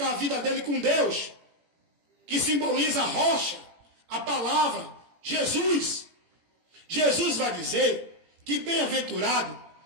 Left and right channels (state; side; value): late; left; 18 ms